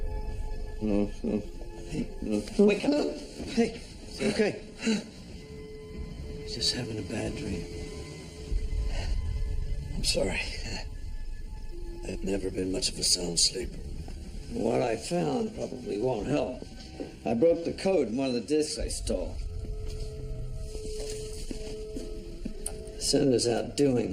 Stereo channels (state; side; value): identical; both; correlation 1.00